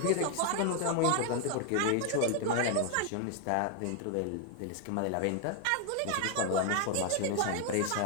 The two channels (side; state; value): both; different; correlation 0.00